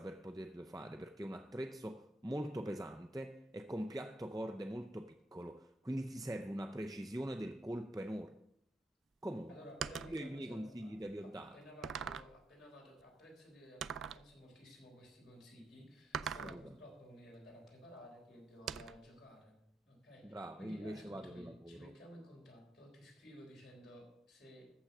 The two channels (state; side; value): normal; both; correlation 0.84